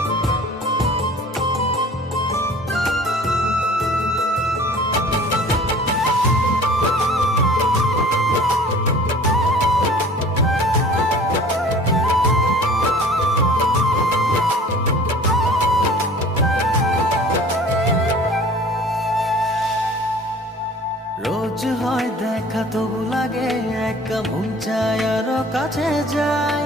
রোজ হয় দেখা তবু লাগে একা, মন চায় আরো কাছে যাই।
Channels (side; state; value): both; normal; correlation 0.47